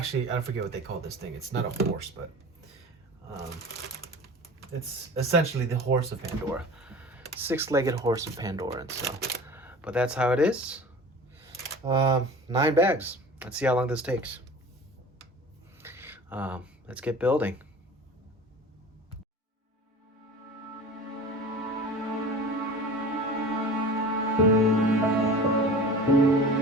I forget what they call this thing. It's not a horse, but it's essentially the horse of Pandora. 6-legged horse of Pandora. And so, but that's how it is. 9 bags. Let's see how long this takes. Let's get building.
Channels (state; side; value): normal; both; correlation 0.38